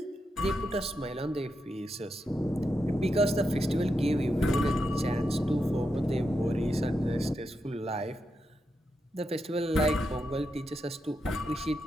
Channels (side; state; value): both; normal; correlation 0.86